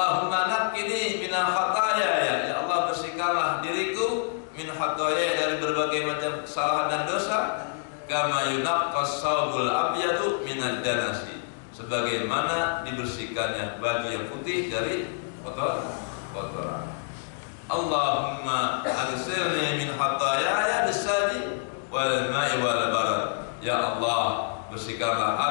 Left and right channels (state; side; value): silent; right; digital silence